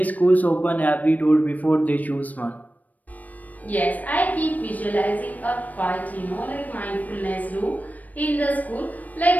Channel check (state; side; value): late; right; 0.077 ms